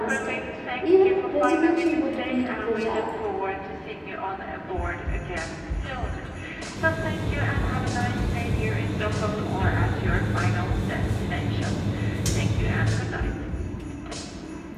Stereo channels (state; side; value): identical; both; correlation 1.00